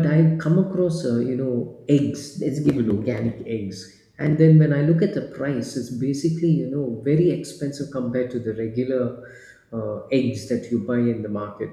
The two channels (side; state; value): both; identical; correlation 1.00